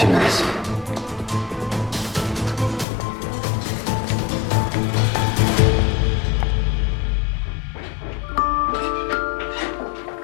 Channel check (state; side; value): drops out; right; at 2.9 s